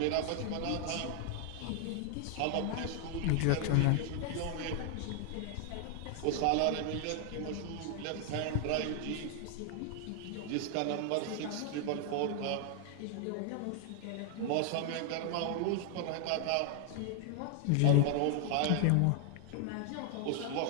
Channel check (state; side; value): different; both; correlation 0.00